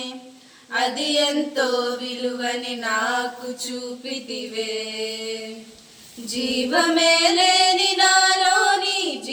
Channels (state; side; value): identical; both; correlation 1.00